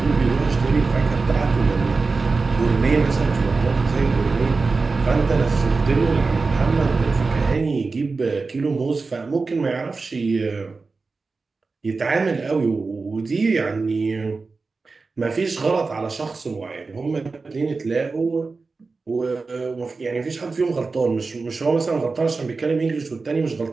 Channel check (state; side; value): quieter; left; 4.1 dB